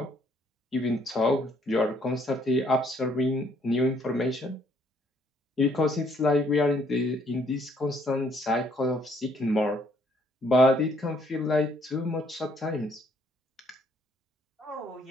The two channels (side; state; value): both; normal; correlation 0.66